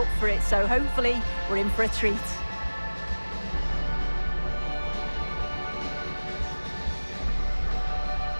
for it, so hopefully we're in for a treat.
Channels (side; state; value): both; inverted; correlation -1.00